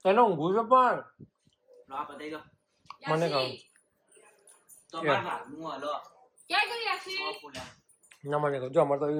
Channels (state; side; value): identical; both; correlation 1.00